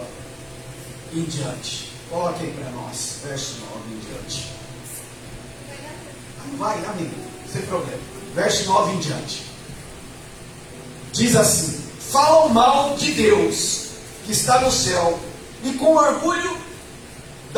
em diante. Coloque aí para nós, verso 9 em diante. Vai, amigo, sem problema. Verso 9 em diante. Diz assim: falam mal de Deus que está no céu, e com orgulho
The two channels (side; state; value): both; identical; correlation 1.00